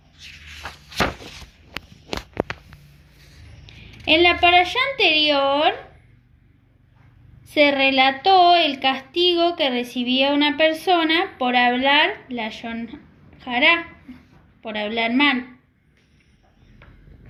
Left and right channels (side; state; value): both; identical; correlation 1.00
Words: En la parashá anterior se relató el castigo que recibía una persona por hablar lashon hará, por hablar mal.